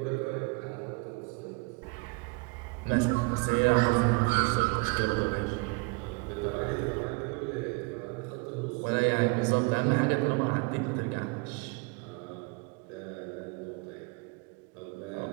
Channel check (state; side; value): quieter; left; 28.5 dB